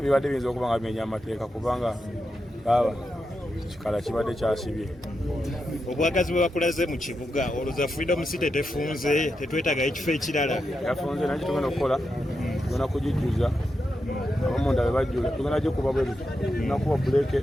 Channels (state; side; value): normal; both; correlation 0.87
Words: bibadde biyinza okuba nga bimenya amateeka kubanga baba kikala kibadde kyasibye. Obwagazi bwe bakulaze mu kibuga olowooza Freedom City tefunze tetwetagayo ekifo ekirala? Yafunze naye tugenda okukola tugenda kugijjuza abamunda be bajjula tugenda gikuba bwe tugenda kuba buleeke